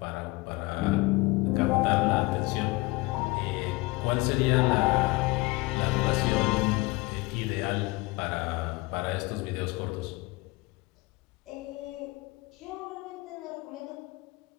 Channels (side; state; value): right; quieter; 22.9 dB